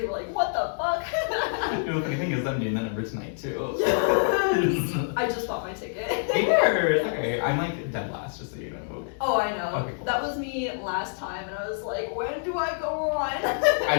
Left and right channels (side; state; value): right; silent; digital silence